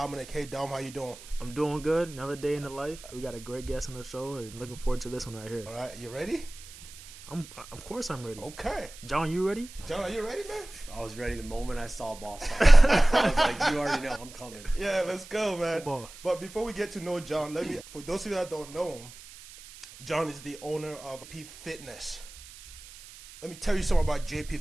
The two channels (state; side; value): noise; right; hiss, 18 dB below the sound